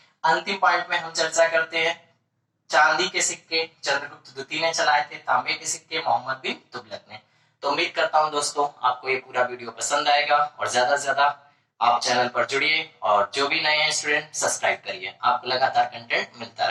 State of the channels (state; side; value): identical; both; correlation 1.00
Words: अंतिम पॉइंट में हम चर्चा करते हैं चांदी के सिक्के चंद्रगुप्त द्वितीय ने चलाए थे, तांबे के सिक्के मोहम्मद बिन तुगलक ने। तो उम्मीद करता हूं दोस्तों आपको ये पूरा वीडियो पसंद आएगा और ज्यादा से ज्यादा आप चैनल पर जुड़िए और जो भी नए हैं स्टूडेंट सब्सक्राइब करिए, आपको लगातार कंटेंट मिलता